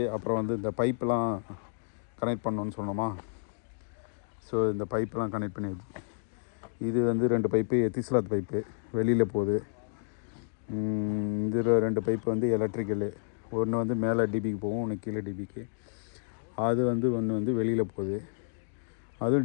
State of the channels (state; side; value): silent; right; digital silence